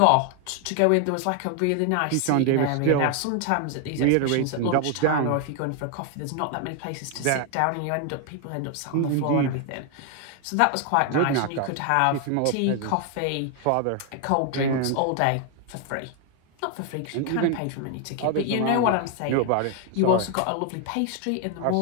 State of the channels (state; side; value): different; both; correlation 0.01